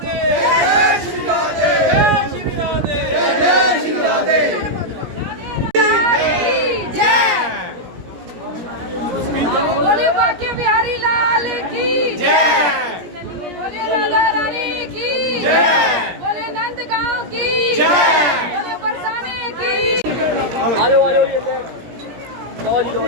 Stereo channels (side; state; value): left; late; 17 ms